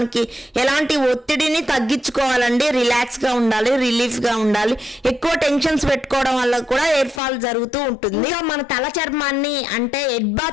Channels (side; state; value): right; drops out; at 7.2 s